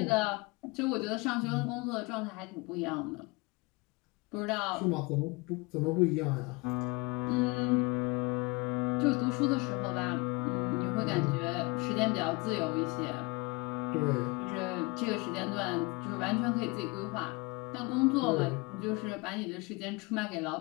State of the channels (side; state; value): right; quieter; 26.6 dB